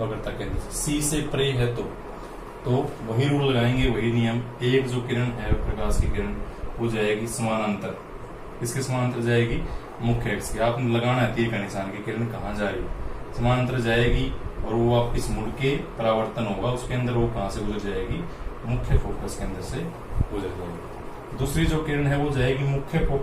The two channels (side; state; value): both; identical; correlation 1.00